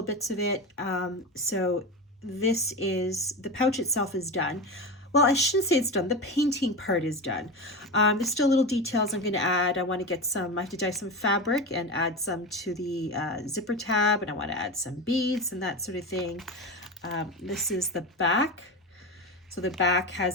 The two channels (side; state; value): both; normal; correlation 0.22